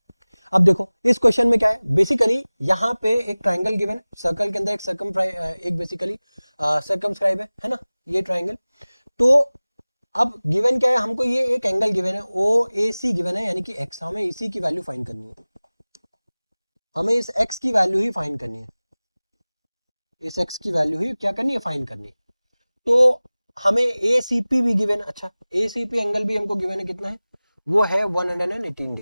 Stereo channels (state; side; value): inverted; both; correlation -0.99